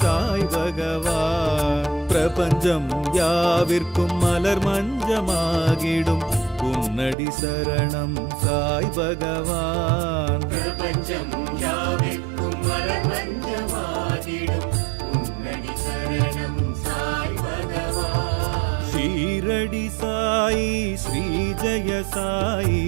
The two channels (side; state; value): left; drops out; at 7.2 s